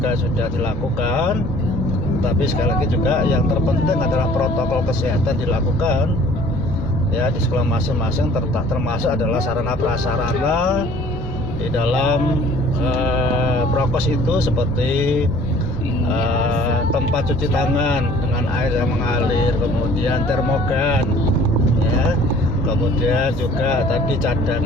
sudah dilakukan. Tapi sekali lagi juga yang terpenting adalah protokol kesehatan dilakukan ya di sekolah masing-masing, termasuk adalah sarana prasarana di dalam prokes itu seperti tempat cuci tangan dengan air yang mengalir, kemudian termogan ya, kemudian juga tadi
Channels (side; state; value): both; normal; correlation 0.52